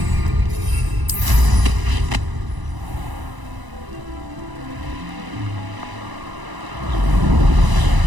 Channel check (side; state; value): left; late; 1.0 ms